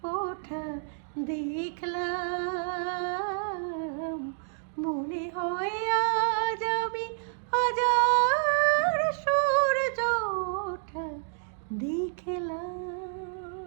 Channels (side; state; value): left; silent; digital silence